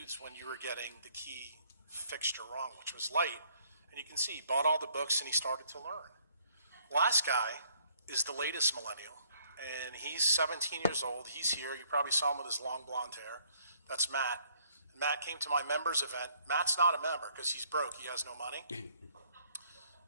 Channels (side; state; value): both; inverted; correlation -0.64